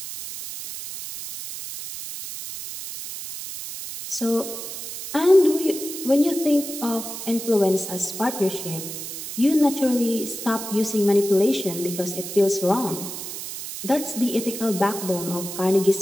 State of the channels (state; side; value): noise; right; hiss, 8 dB below the sound